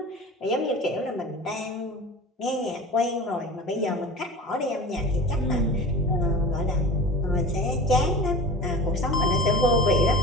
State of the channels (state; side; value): normal; both; correlation 0.35